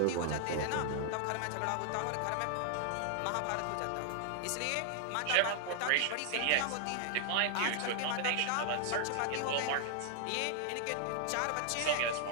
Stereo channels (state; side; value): different; both; correlation 0.00